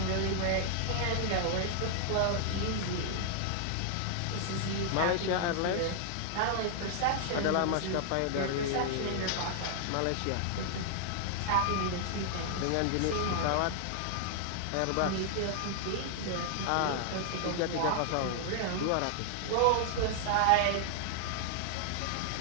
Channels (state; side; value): different; both; correlation 0.00